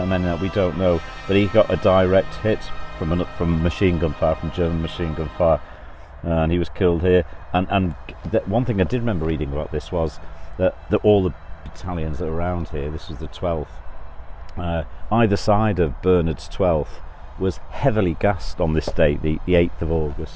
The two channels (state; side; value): identical; both; correlation 1.00